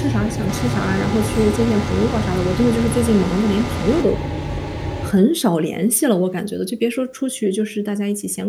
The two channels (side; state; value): both; identical; correlation 1.00